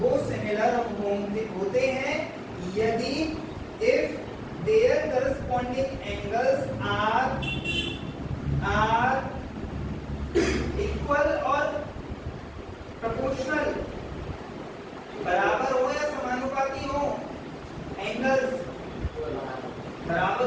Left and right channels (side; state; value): both; identical; correlation 1.00